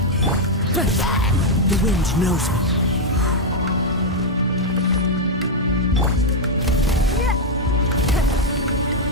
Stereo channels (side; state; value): both; normal; correlation -0.01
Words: The wind knows me.